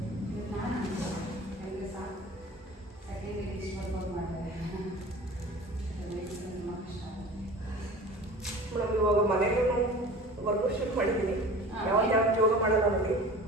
ಮೇಡಮ್ ಇವಾಗ ಮನೆಯಲ್ಲೂ ವರ್ಕೌಟ್ ಮಾಡಿದ್ದೀನಿ. ಯಾವತ್ತು ಯೋಗ ಮಾಡಲ್ಲ ನನಗೆ.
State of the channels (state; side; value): normal; both; correlation 0.40